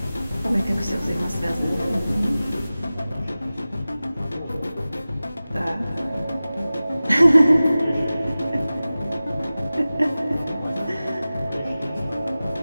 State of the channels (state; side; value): inverted; both; correlation -0.96